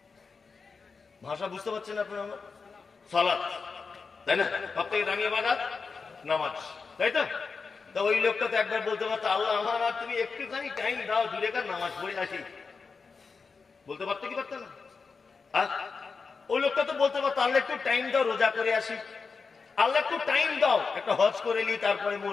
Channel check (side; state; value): right; quieter; 4.9 dB